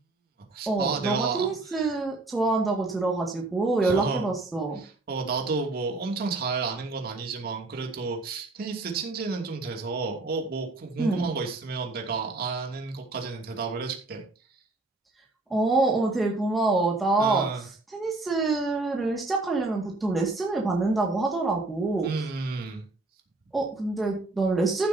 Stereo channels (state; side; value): quieter; left; 3.1 dB